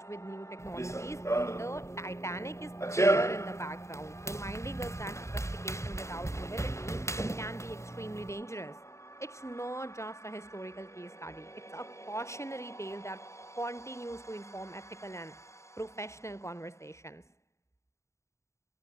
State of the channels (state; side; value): late; right; 0.14 ms